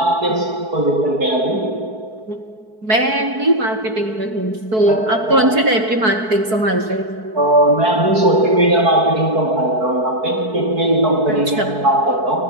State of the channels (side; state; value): left; late; 4.6 ms